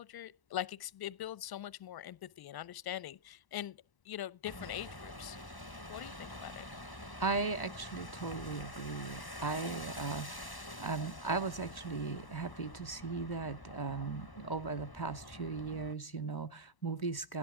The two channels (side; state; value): right; late; 1.0 ms